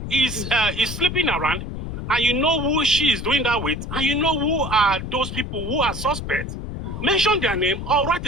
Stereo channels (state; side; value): noise; left; rumble, 7 dB below the sound